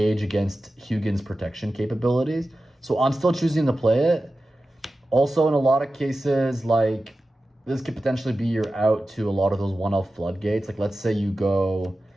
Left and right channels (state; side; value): normal; both; correlation 0.94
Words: against Hugin's protection capabilities. So I'm still choosing to play it. Also, in a lot of cases, like, this could potentially be your out to a lot of those 1-elf floodgates. Like, let's say you go